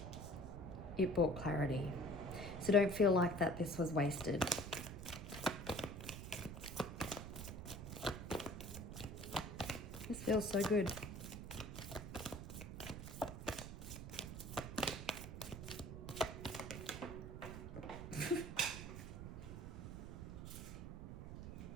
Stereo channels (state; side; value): noise; right; rumble, 8 dB below the sound